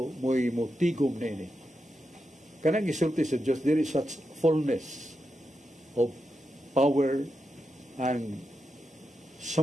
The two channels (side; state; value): both; normal; correlation 0.87